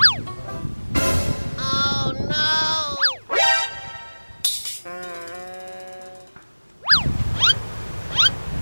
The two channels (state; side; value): inverted; both; correlation -1.00